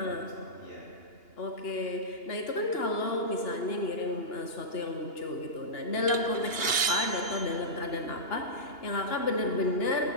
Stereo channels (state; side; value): late; right; 2.9 ms